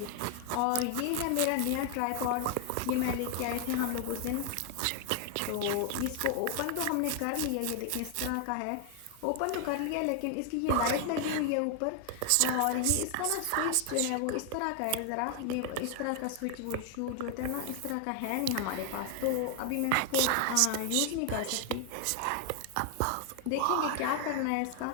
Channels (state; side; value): different; both; correlation 0.00